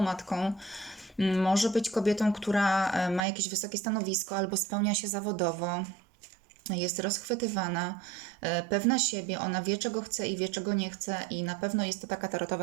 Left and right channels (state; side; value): drops out; left; at 3.2 s